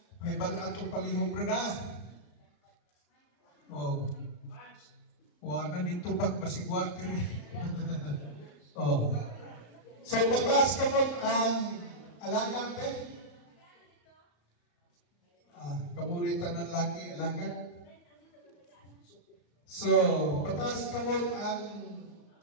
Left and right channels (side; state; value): right; late; 34 ms